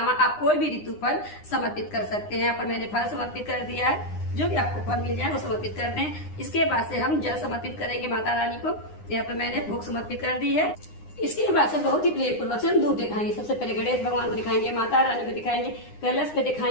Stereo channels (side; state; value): right; late; 9.8 ms